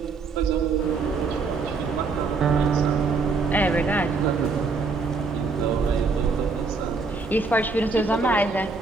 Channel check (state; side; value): quieter; left; 4.2 dB